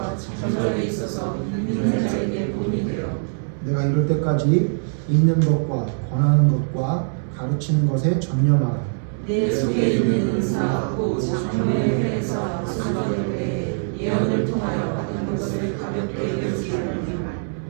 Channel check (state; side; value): silent; left; digital silence